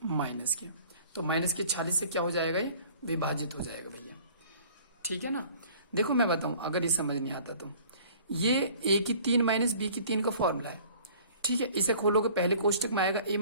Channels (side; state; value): both; inverted; correlation -0.51